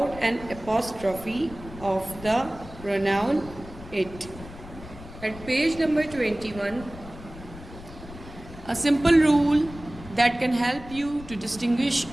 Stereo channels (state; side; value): noise; left; rumble, 16 dB below the sound